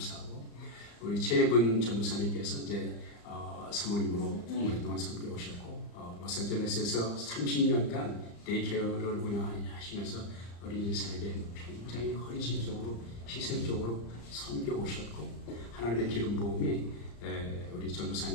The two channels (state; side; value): late; right; 35 ms